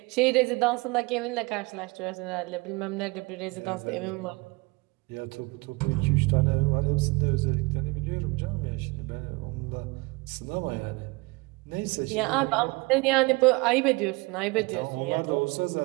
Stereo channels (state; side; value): quieter; left; 25.7 dB